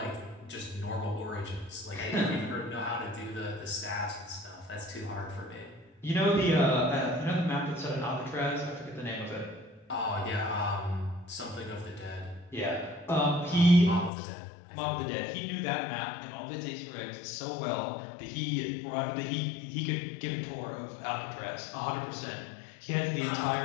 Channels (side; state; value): right; drops out; at 14.1 s